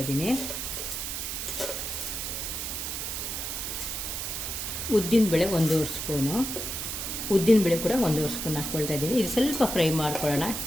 ಇದ್ದೀನಿ. ಉದ್ದಿನಬೇಳೆ 1 ಸ್ಪೂನು. ಉದ್ದಿನಬೇಳೆ ಕೂಡ 1 ಸ್ಪೂನ್ ಹಾಕ್ಕೊಳ್ತಾ ಇದ್ದೀನಿ. ಇದು ಸ್ವಲ್ಪ ಫ್ರೈ ಮಾಡ್ಕೊಳ್ಳೋಣ.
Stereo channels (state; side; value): noise; right; hiss, 4 dB below the sound